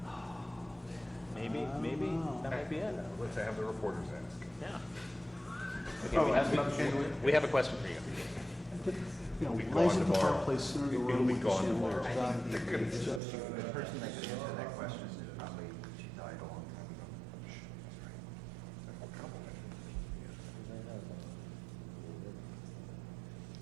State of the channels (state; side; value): drops out; left; at 13.2 s